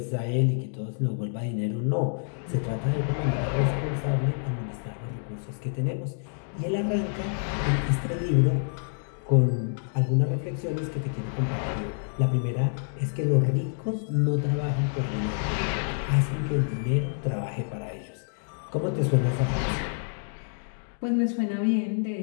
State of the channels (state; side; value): silent; right; digital silence